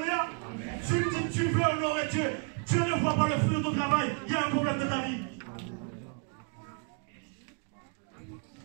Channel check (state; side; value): quieter; left; 37.6 dB